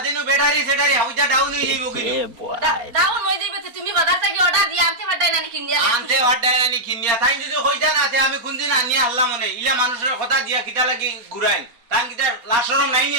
নু ব্যাটারি সেটারি হাউজা ডাউন হই যাইবো কি ডাউন হই যাইবে তুমি বাজার থেকে অর্ডার দি আনতে পারতাই না নি কিনিয়া আনতে পারতাই না নি কিনিয়া তাই যদি কইতা না তে আমি কোনদিন আনিয়া আল্লাহ মনে ইলা মানুষের কথা দিয়া কিটা লাগি ঘুরাইন তান কিটা লাশরম নাই নি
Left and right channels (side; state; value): left; late; 4.3 ms